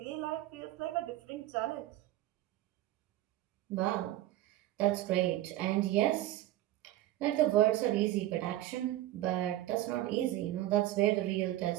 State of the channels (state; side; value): quieter; left; 14.7 dB